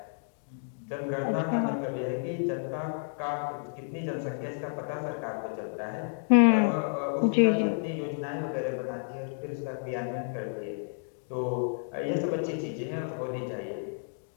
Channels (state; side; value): silent; right; digital silence